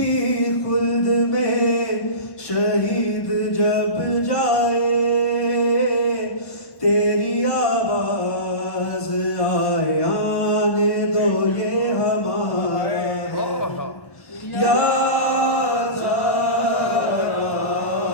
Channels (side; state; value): right; late; 1.1 ms